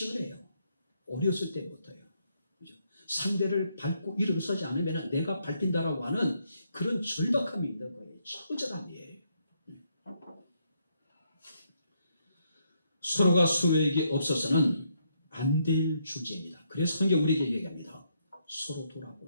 어렸을 때부터요. 그죠? 상대를 밟고 일어서지 않으면 내가 밟힌다라고 하는 그런 절박함이 있는 거예요. 처절함이에요. 서로가 서로에게 없어서는 안 될 존재입니다. 그래서 성경 우리에게 얘기합니다. 서로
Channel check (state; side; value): inverted; both; correlation -0.76